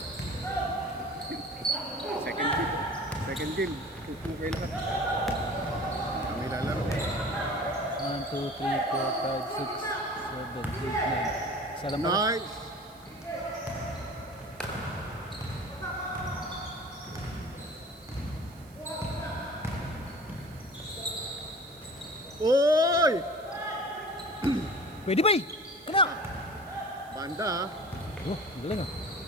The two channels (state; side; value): noise; right; hiss, 25 dB below the sound